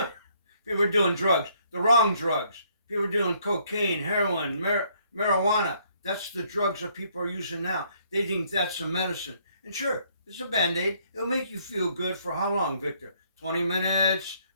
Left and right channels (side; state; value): both; inverted; correlation -0.67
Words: People are doing drugs, the wrong drugs. People are doing cocaine, heroin, marijuana. That's the drugs that people are using now. They think that's a medicine. And sure, it's a Band-Aid. It'll make you feel good for how long, Victor? 20 minutes,